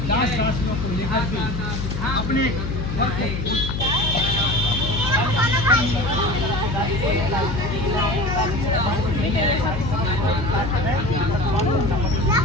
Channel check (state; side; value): noise; left; hum, 4 dB below the sound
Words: दास दासियों को लेकर के अपने घर को